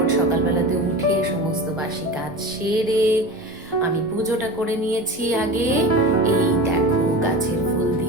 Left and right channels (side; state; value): both; normal; correlation 0.30